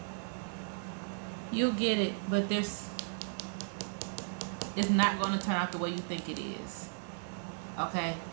You'll get it, but this is not going to turn out the way you think it is. Okay?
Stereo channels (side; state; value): left; silent; digital silence